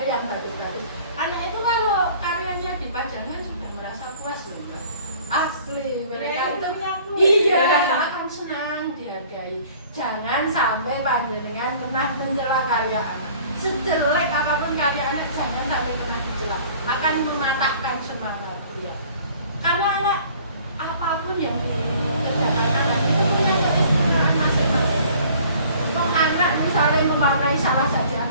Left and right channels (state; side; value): inverted; both; correlation -0.52